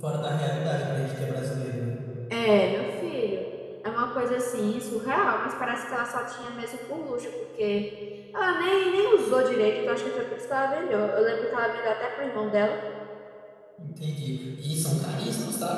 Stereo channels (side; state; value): both; identical; correlation 1.00